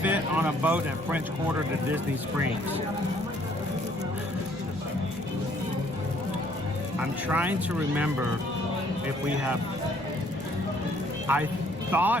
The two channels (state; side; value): normal; both; correlation 0.63